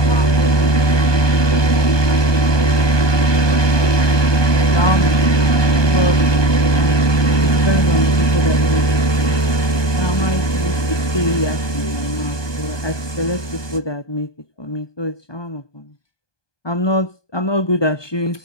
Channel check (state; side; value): late; right; 1.2 ms